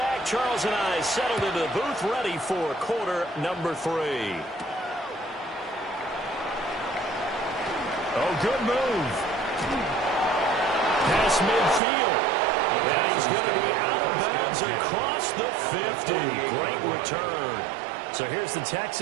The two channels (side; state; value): left; drops out; at 11.8 s